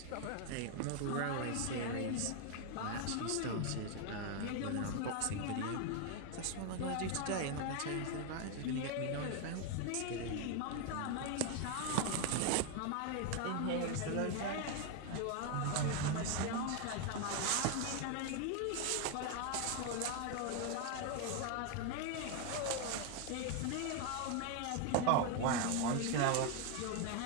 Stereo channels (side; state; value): both; different; correlation 0.01